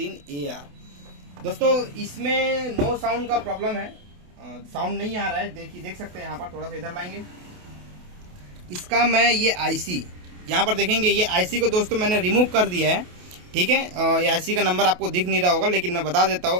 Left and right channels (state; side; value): late; left; 28 ms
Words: दोस्तों इसमें नो साउंड का प्रॉब्लम है, साउंड नहीं आ रहा है। देख सकते हैं यहाँ पर, थोड़ा सा इधर लाएंगे। इसका मैं ये आईसी यहाँ पर देखेंगे, ये आईसी को दोस्तों मैंने रिमूव कर दिया है। ठीक है, ये आईसी का नंबर आपको दिख नहीं रहा होगा लेकिन मैं बता देता